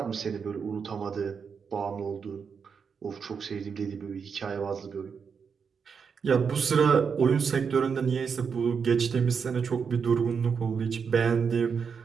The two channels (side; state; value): left; quieter; 6.2 dB